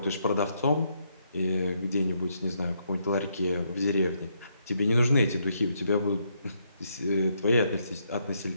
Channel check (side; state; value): both; inverted; correlation -0.76